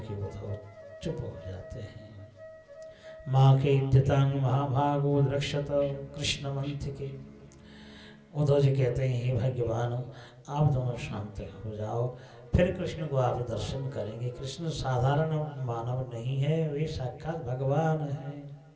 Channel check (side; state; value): both; identical; correlation 1.00